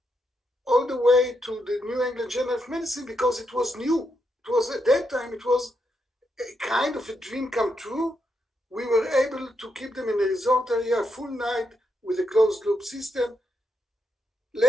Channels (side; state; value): both; normal; correlation 0.82